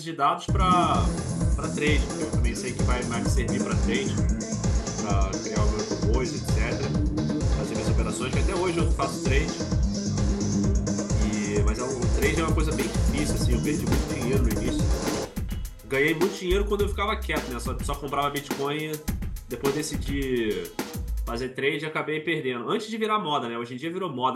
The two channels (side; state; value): both; identical; correlation 1.00